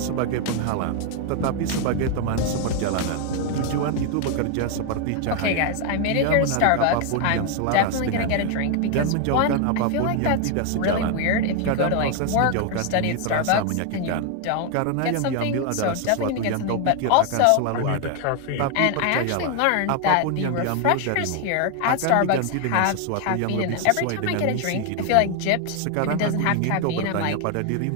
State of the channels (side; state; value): both; different; correlation 0.01